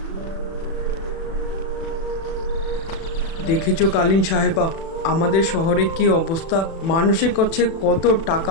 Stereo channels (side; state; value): right; late; 36 ms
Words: দেখেছো কালীন সাহেবা, আমাদের শহরে কি অবস্থা? মানুষের কাছে কত